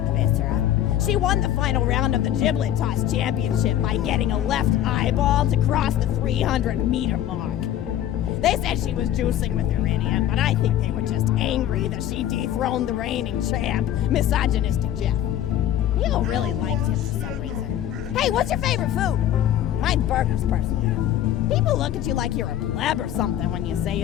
the viscera. She won the final round of the giblet toss championship by getting a left eyeball to cross the 300-meter mark. They said she was juicing with her idiot, but I think they were just angry that she dethroned the reigning champ, misogynistic Jeff. People really like you for some reason. Hey, what's your favorite food? Mine's burgers, personally. People look at you like you're a pleb or something when you say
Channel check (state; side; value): quieter; right; 11.7 dB